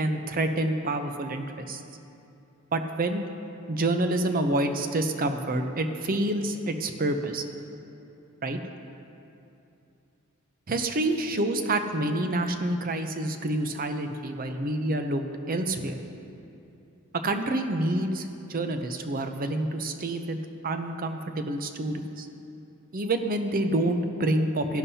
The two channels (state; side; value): normal; both; correlation 0.46